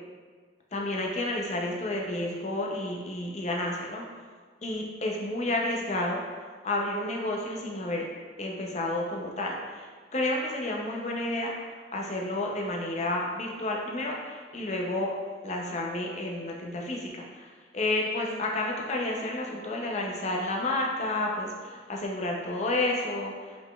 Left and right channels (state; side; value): normal; both; correlation 0.23